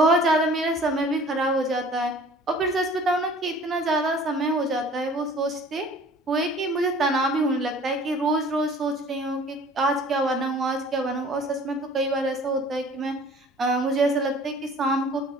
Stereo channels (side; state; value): both; normal; correlation 0.49